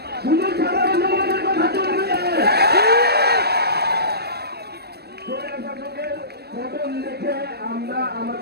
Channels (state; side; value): late; left; 0.47 ms